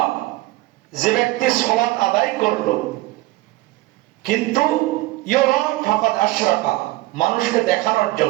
যে ব্যক্তি সালাত আদায় করলো কিন্তু ইউরা ফাকাদ আশরাকা, মানুষকে দেখানোর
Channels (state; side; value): quieter; left; 19.1 dB